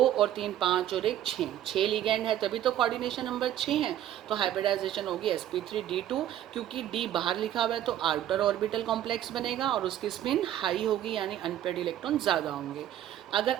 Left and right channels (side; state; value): left; quieter; 11.7 dB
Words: और 3 5 और एक 6, 6 लिगेंड है तभी तो कोऑर्डिनेशन नंबर 6 है, तो हाइब्रिडाइजेशन होगी sp3d2, क्योंकि d बाहर लिखा हुआ है तो आउटर ऑर्बिटल कॉम्प्लेक्स बनेगा और उसकी स्पिन हाई होगी, यानी अनपेयर्ड इलेक्ट्रॉन ज़्यादा होंगे। अगर